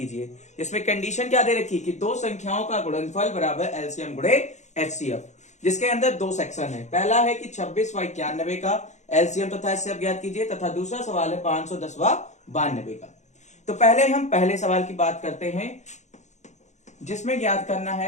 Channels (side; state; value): right; late; 0.34 ms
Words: इसमें कंडीशन क्या दे रखी कि दो संख्याओं का गुणनफल बराबर एलसीएम गुणे एचसीएफ, जिसके अंदर दो सेक्शन है। पहला है कि 26 व 91 का एलसीएम तथा एचसीएफ ज्ञात कीजिए, तथा दूसरा सवाल है 510 व 92 का। तो पहले हम पहले सवाल की बात करते हैं, जिसमें ज्ञात करना